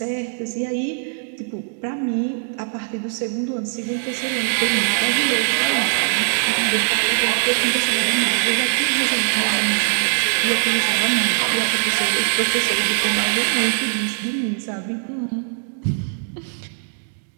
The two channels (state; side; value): silent; left; digital silence